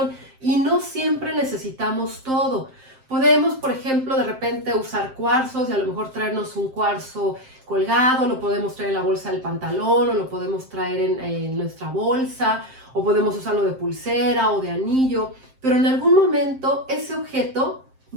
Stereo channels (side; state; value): left; late; 7.6 ms